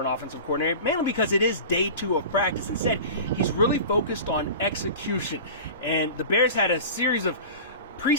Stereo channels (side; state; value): both; inverted; correlation -0.34